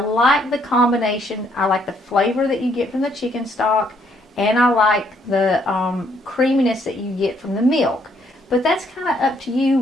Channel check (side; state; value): both; normal; correlation 0.69